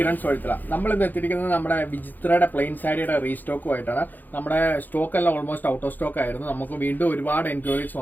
വഴുത്തല. നമ്മൾ ഇന്ന് എത്തിയിരിക്കുന്നത് നമ്മുടെ വിചിത്രയുടെ പ്ലെയിൻ സാരിയുടെ റീസ്റ്റോക്കുമായിട്ടാണ്. നമ്മുടെ സ്റ്റോക്ക് എല്ലാം ഓൾമോസ്റ്റ് ഔട്ട് ഓഫ് സ്റ്റോക്ക് ആയിരുന്നു. നമുക്ക് വീണ്ടും ഒരുപാട് എൻക്വയറീസ്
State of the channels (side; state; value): right; late; 0.086 ms